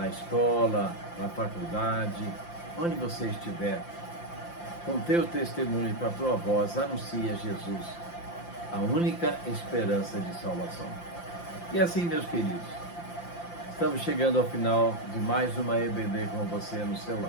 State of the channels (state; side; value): late; right; 5.8 ms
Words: escola, na faculdade, onde você estiver. Com teu testemunho e com a tua voz, anuncia Jesus, a única esperança de salvação. E assim, meus queridos, estamos chegando ao final de mais uma EBD com você no seu